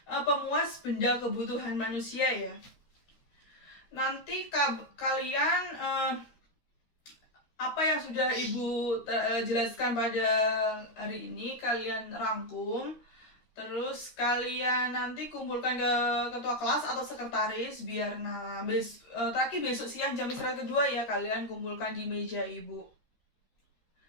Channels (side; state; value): right; late; 13 ms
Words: pemuas benda kebutuhan manusia ya. Nanti kalian apa yang sudah Ibu jelaskan pada hari ini kalian rangkum, terus kalian nanti kumpulkan ke ketua kelas atau sekretaris biar terakhir besok siang jam istirahat kedua ya kalian kumpulkan di meja Ibu.